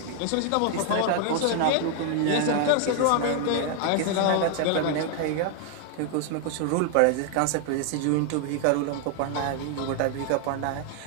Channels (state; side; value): different; both; correlation 0.00